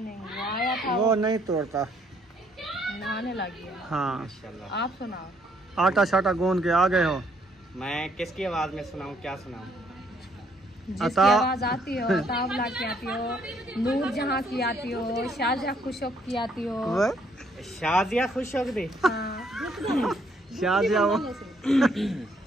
वो आया था, वो नहीं तोड़ता। नहाने लगी है। हाँ माशाल्लाह। आप सुनाओ। आटा शाटा गूंद के आ गए हो। मैं किसकी आवाज में सुनाऊं, क्या सुनाऊं? जिसकी आवाज आती हो, तावला की आती हो, नूर जहाँ की आती हो, शाहजहाँ खुशौक की आती हो। शाजिया खुश हो गई। हाँ। शाजिया वो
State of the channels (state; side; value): normal; both; correlation 0.68